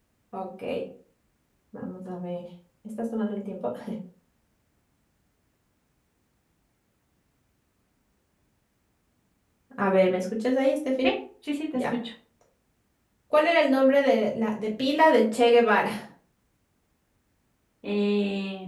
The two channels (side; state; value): both; identical; correlation 1.00